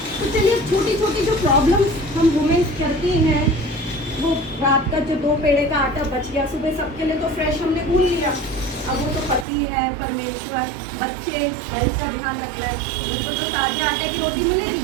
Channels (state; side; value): drops out; left; at 9.5 s